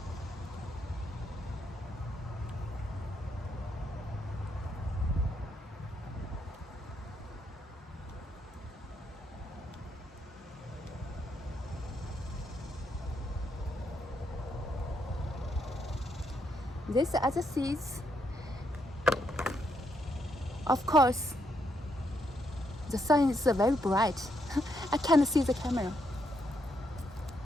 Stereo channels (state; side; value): normal; both; correlation 0.77